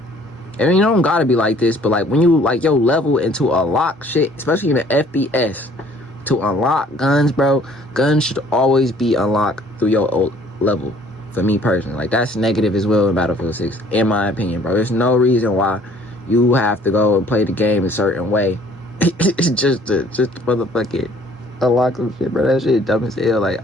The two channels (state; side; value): normal; both; correlation 0.57